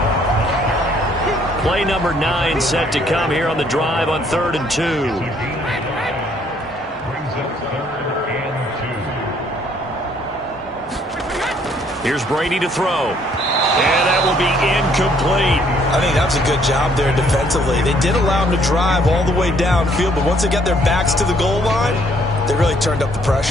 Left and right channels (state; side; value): normal; both; correlation 0.65